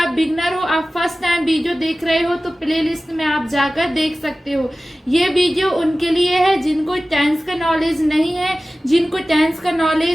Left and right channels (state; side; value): normal; both; correlation 0.96